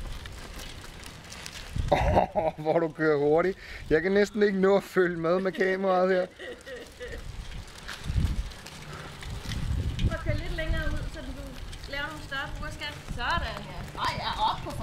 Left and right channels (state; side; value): identical; both; correlation 1.00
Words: Hvor du kører hurtigt. Jeg kan næsten ikke nå at følge med kameraet her. Prøv at køre lidt længere ud, så du laver nogle større burskat. Sådan, ja. Nej, jeg er oppe på